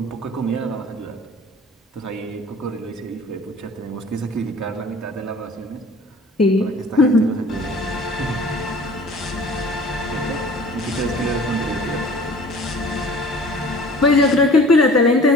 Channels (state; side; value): normal; both; correlation 0.47